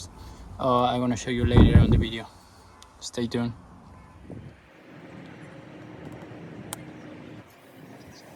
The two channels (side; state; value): both; identical; correlation 1.00